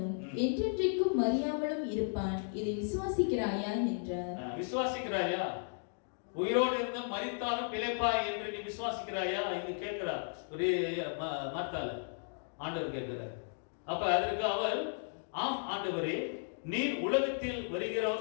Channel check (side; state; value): right; silent; digital silence